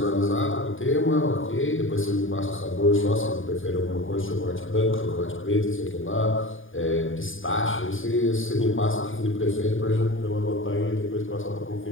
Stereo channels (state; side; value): late; right; 0.58 ms